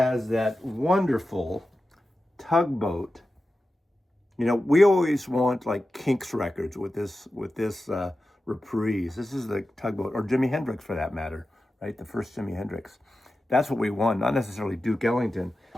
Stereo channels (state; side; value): normal; both; correlation 0.93